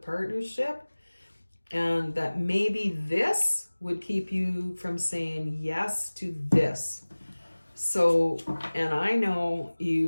and that maybe this would keep you from saying yes to this. So, and I know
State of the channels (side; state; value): both; inverted; correlation -1.00